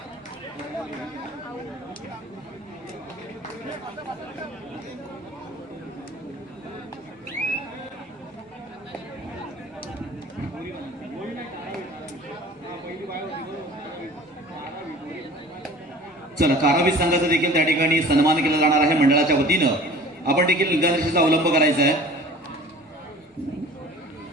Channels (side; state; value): both; normal; correlation 0.44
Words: चला कारावी संघाचा देखील त्या ठिकाणी सन्मान केला जाणार आहे मंडळाच्या वतीनं. आपण देखील निगानिशीचा अवलंब करायचा आहे.